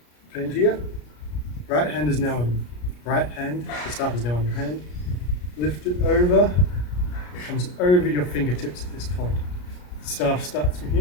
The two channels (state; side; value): late; right; 33 ms